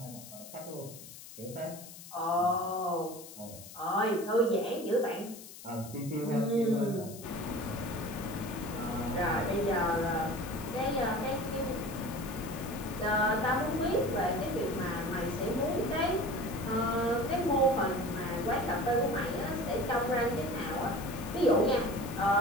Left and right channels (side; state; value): left; noise; hiss, 15 dB below the sound